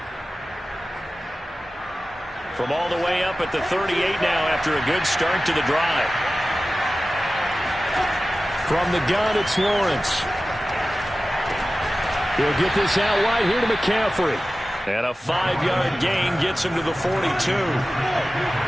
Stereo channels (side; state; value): both; normal; correlation 0.96